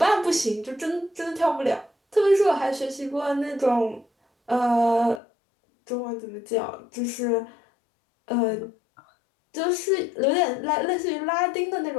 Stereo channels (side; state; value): right; drops out; at 5.2 s